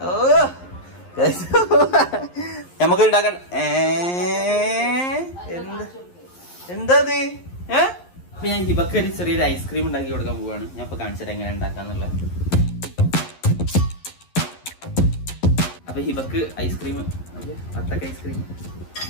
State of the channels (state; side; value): late; right; 11 ms